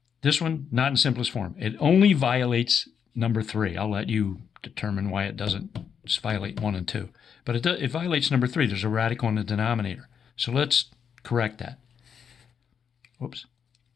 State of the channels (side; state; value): right; quieter; 7.3 dB